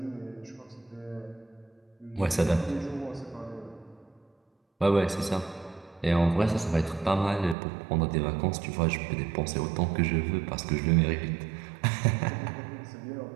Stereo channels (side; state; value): left; drops out; at 7.6 s